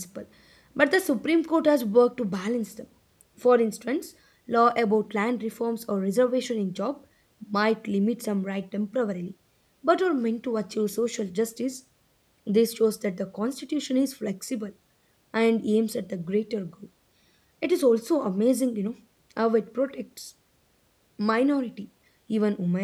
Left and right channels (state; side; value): identical; both; correlation 1.00